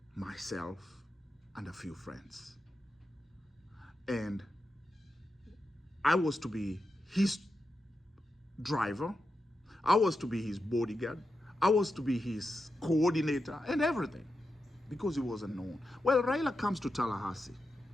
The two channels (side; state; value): both; normal; correlation 0.88